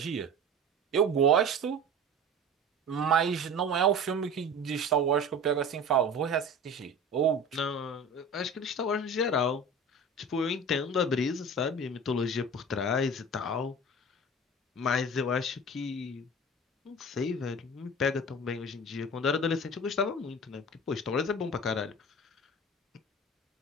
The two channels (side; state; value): both; normal; correlation 0.36